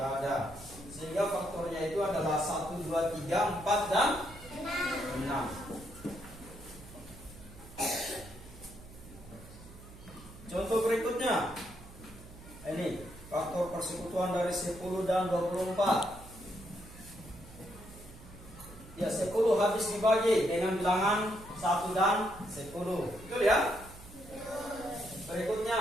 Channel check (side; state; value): right; noise; hum, 18 dB below the sound